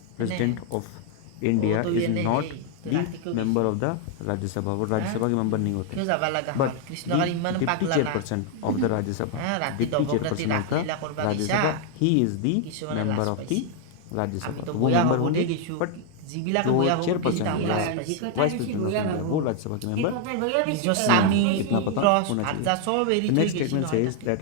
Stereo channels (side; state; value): both; different; correlation 0.00